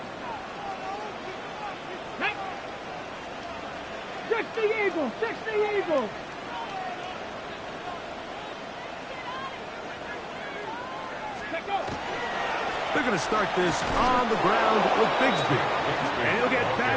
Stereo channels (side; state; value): both; identical; correlation 1.00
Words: 60 Eagles! 60 Eagles! They're going to start this on the ground with Bigsby. And he'll get